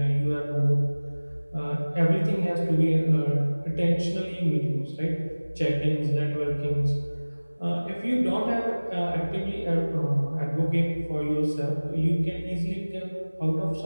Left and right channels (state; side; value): inverted; both; correlation -1.00